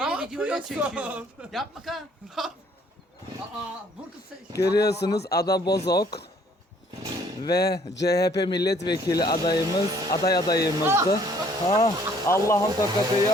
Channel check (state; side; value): normal; both; correlation 0.61